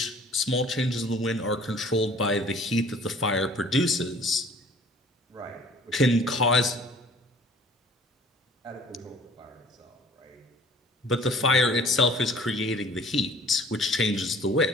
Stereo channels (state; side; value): normal; both; correlation 0.51